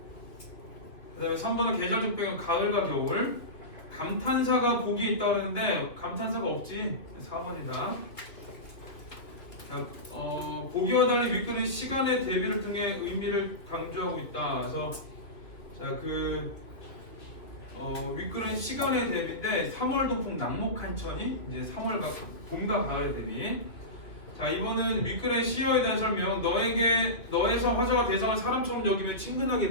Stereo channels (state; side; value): late; right; 2.3 ms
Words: 그다음에 3번은 계절적 배경 가을과 겨울. 감탄사가 보기에 있다 그랬는데 감탄사가 없지. 4번이다. 자, 보기와 달리 윗글은 시간의 대비를 통해 의미를 강조하고 있다. 그래서 자, 윗글은 시간의 대비인데 3월 동풍 낙목한 천이 이제 3월과 봄과 가을 대비. 자, 이번은 윗글의 시어에 대한 설명. 너에서 화자가 대상을 사람처럼 여기며 친근하게